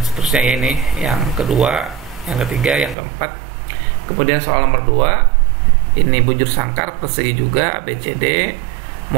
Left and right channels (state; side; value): drops out; left; at 3.0 s